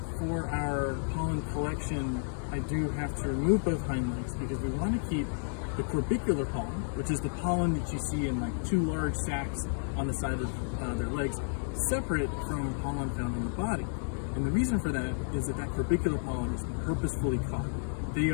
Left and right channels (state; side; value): silent; right; 57 dB below the other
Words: for our pollen collection, I do have to remove both hind legs because we want to keep the corbicular pollen, which is the pollen that you see in like 2 large sacs on the side of their legs, separate from pollen found on the body. And the reason for that is that corbicular pollen is purposefully caught. They